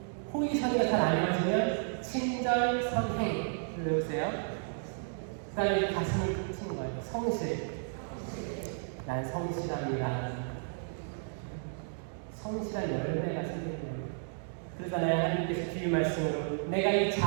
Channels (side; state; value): left; silent; digital silence